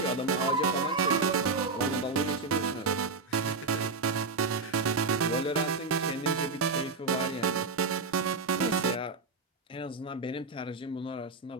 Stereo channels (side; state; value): left; quieter; 4.0 dB